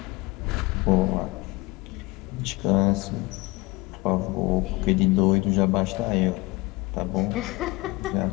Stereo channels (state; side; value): quieter; right; 23.1 dB